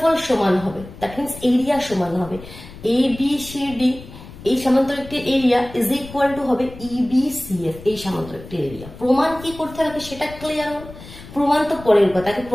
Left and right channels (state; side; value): noise; left; rumble, 16 dB below the sound